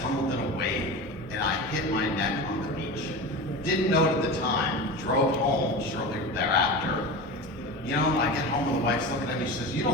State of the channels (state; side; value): normal; both; correlation 0.28